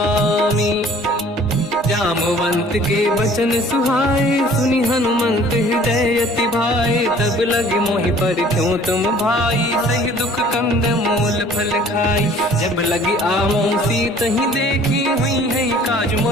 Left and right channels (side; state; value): both; normal; correlation 0.52